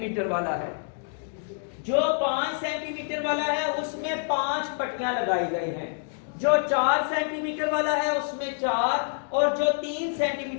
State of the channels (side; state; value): right; silent; 60 dB below the other